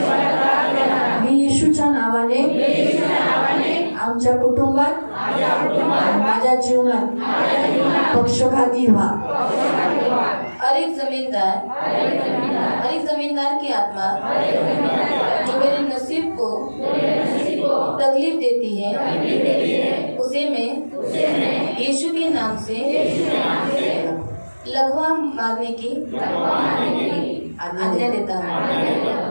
मी येशूच्या नावाने आमच्या कुटुंबात माझ्या जीवनात पक्षपाती व्हा। हर एक जमींदार की आत्मा जो मेरे नसीब को तकलीफ देती है, उसे मैं यीशु के नाम से लघवा मारने की आज्ञा देता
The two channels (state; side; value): inverted; both; correlation -1.00